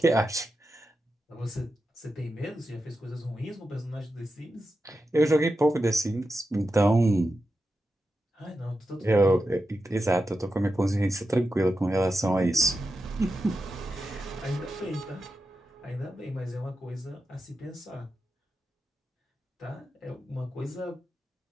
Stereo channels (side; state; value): both; normal; correlation 0.90